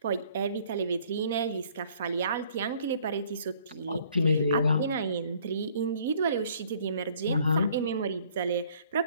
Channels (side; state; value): both; inverted; correlation -0.59